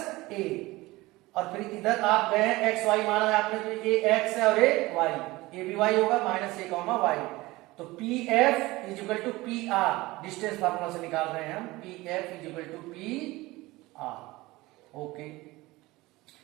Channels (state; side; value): quieter; left; 20.2 dB